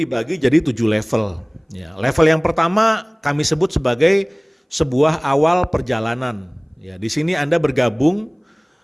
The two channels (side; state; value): both; identical; correlation 1.00